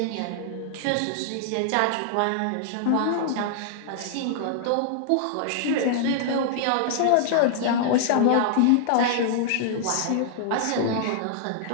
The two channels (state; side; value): different; both; correlation -0.01